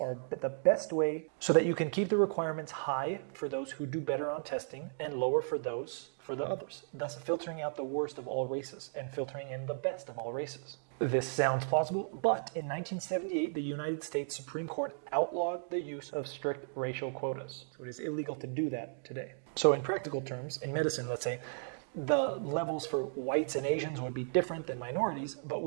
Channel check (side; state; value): left; silent; digital silence